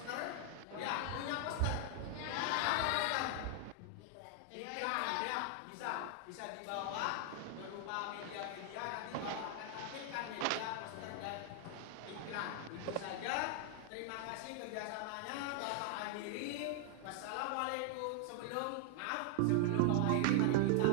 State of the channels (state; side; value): different; both; correlation 0.00